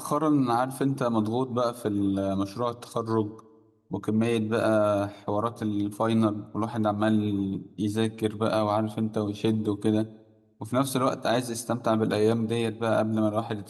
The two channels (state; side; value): identical; both; correlation 1.00